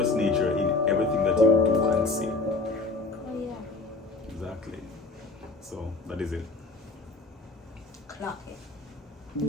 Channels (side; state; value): right; quieter; 3.6 dB